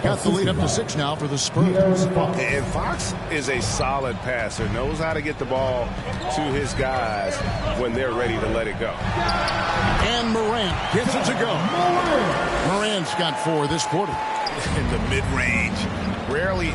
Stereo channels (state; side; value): identical; both; correlation 1.00